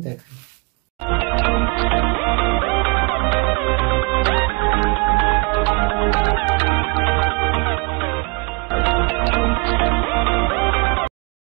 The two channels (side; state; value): left; quieter; 30.5 dB